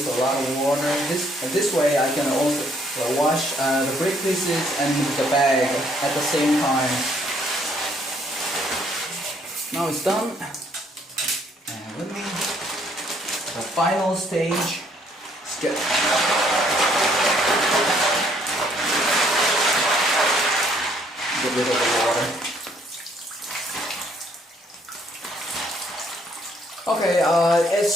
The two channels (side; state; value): both; normal; correlation 0.66